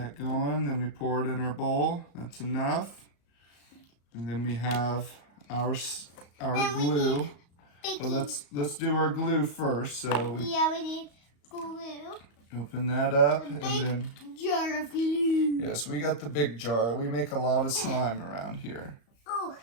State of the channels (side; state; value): right; late; 35 ms